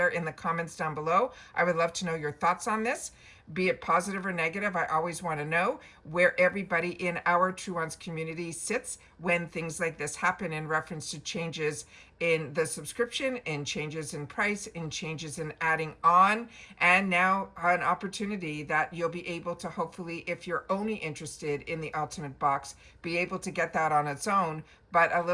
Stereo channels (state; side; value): identical; both; correlation 1.00